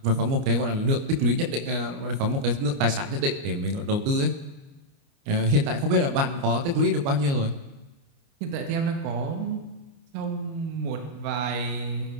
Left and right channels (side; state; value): left; late; 29 ms